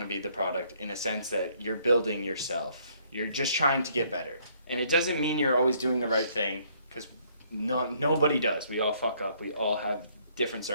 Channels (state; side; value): inverted; both; correlation -0.66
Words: be the product in a sense that you're building yourself. You're just trying to get better. And it doesn't mean you're always doing the right thing, because nobody does. We all fuck up. We all have different